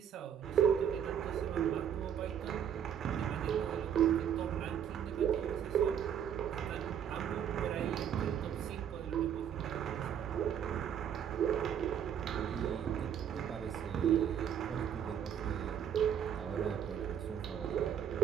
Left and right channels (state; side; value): quieter; left; 8.8 dB